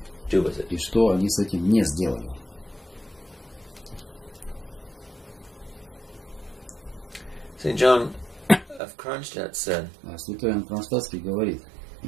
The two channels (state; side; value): drops out; left; at 8.8 s